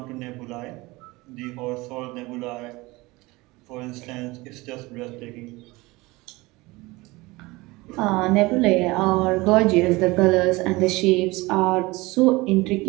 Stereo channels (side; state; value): left; quieter; 22.0 dB